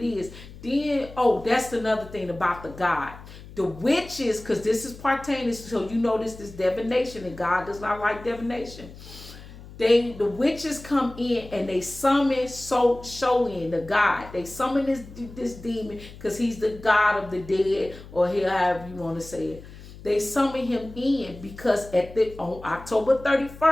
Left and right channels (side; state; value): left; noise; hum, 17 dB below the sound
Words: is. Then, that's another thing about the God. The witches, because this is pertaining, so you know this is divination, and God does not like divination. The witches come in and they summon Shoin, the god. They summon this demon because he's the god of the dead, or however you want to say it. They summon him in because on October